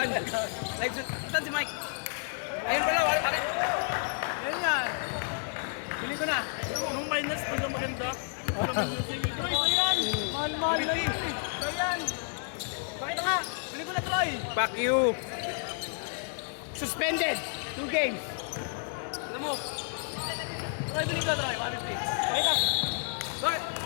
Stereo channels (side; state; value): right; silent; 57 dB below the other